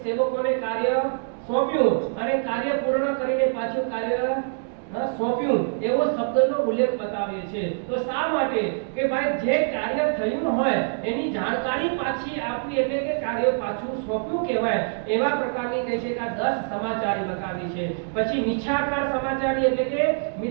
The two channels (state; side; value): silent; left; digital silence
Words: સેવકોને કાર્ય સોંપ્યું અને કાર્ય પૂર્ણ કરીને પાછું કાર્ય સોંપ્યું એવો શબ્દનો ઉલ્લેખ બતાવે છે. તો શા માટે કે ભાઈ જે કાર્ય થયું હોય એની જાણકારી પાછી આપવી એટલે કે કાર્ય પાછું સોંપ્યું કહેવાય. એવા પ્રકારની કહે છે કે આ 10 સમાચારી બતાવી છે. પછી મિથ્યાકાર સમાચારી એટલે કે